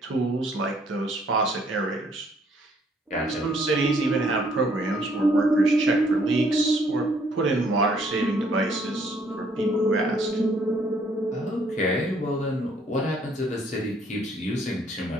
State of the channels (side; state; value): both; normal; correlation 0.65